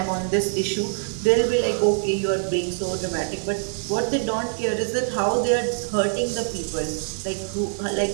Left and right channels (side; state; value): left; silent; digital silence